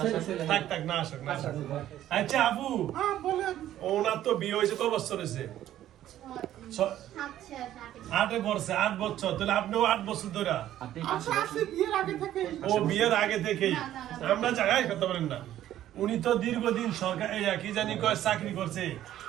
থাক থাক, না আসো না আসো। আচ্ছা আপু, হ্যাঁ বলেন। ওনার তো বিয়ে হয়েছে কত বছর হয়েছে? 8 বছর। 8 বছর, তাহলে আপনিও 8 বছর ধরে? আচ্ছা আসি বিয়ের আগে থেকে। ও বিয়ের আগে থেকেই? আমরা জায়গায় কথা বলেন না। উনি তো দীর্ঘদিন সরকার কি জানি কয় চাকরি করছে,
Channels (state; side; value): quieter; left; 12.5 dB